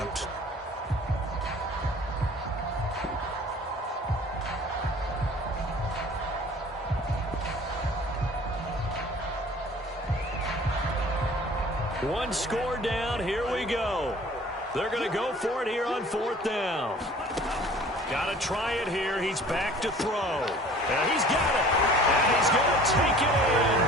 One score down, here we go. They're going to go for it here on 4th down. Got to try it here. He's back to throw. And he's got it. And he's going to take it in.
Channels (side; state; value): both; normal; correlation 0.48